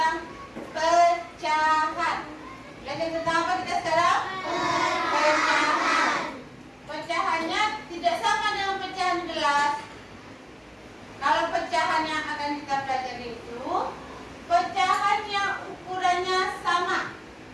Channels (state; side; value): identical; both; correlation 1.00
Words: pecahan. Belajar tentang apa kita sekarang? Pecahan. Pecahannya tidak sama dengan pecahan gelas. Kalau pecahan yang akan kita pelajari itu, pecahan yang ukurannya sama.